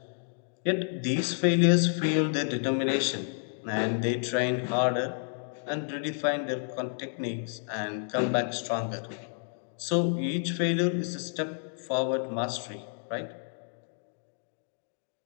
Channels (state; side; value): silent; right; digital silence